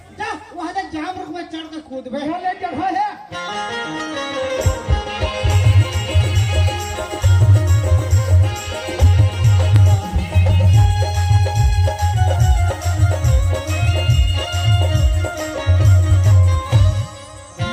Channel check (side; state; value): both; identical; correlation 1.00